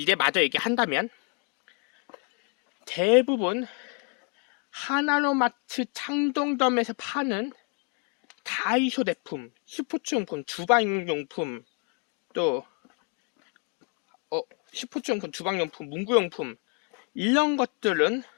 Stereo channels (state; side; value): quieter; right; 35.5 dB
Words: 마저 얘기한다면 대부분 하나로마트 창동점에서 파는 다이소 제품, 스포츠용품, 주방용품, 또 스포츠용품, 주방용품, 문구용품 이런 것들은